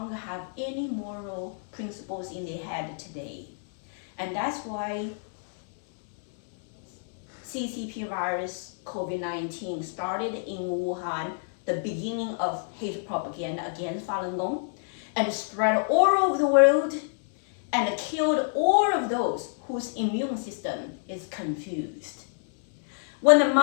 have any moral principles in their head today. And that's why CCP virus COVID-19 started in Wuhan, the beginning of hate propaganda against Falun Gong, and spread all over the world and killed all of those whose immune system is confused. When the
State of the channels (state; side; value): silent; right; 60 dB below the other